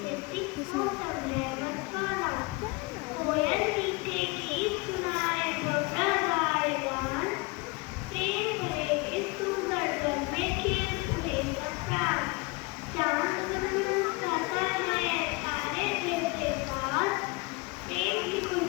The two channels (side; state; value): right; quieter; 25.8 dB